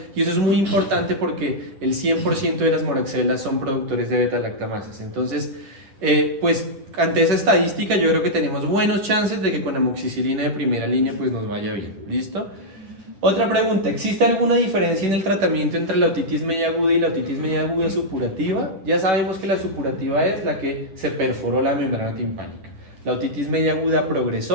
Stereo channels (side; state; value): left; late; 10 ms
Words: y eso es muy importante porque el 100% de las moraxelas son productores de beta-lactamasas. Entonces, pues ante esa estadística yo creo que tenemos buenos chances de que con amoxicilina de primera línea pues nos vaya bien. ¿Listo? Otra pregunta, ¿existe alguna diferencia en el tratamiento entre la otitis media aguda y la otitis media aguda supurativa? Ya sabemos que la supurativa es la que se perforó la membrana timpánica. La otitis media aguda